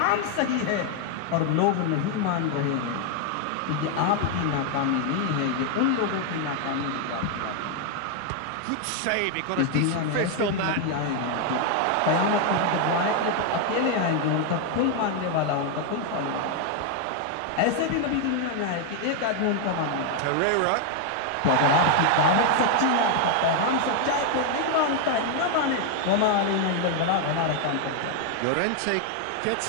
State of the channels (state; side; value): different; both; correlation 0.00